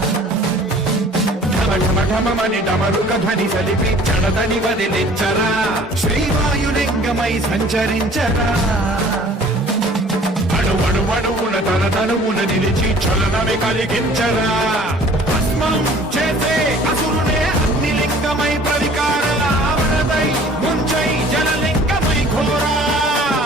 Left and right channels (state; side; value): normal; both; correlation 0.50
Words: ఢమఢమఢమని డమరుక ధ్వని సలిపి చడదని వదిలించరా శ్రీవాయులింగమై సంచరించరా అణువణువున తన తనువున నిలిచి చలనమే కలిగించరా భస్మం చేసే అసురునే అగ్నిలింగమై ప్రవికార వరదై ముంచై జలలింగమై ఘోరా